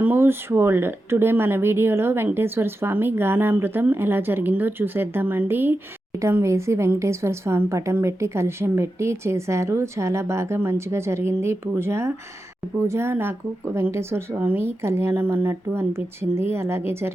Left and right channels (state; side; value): normal; both; correlation 0.90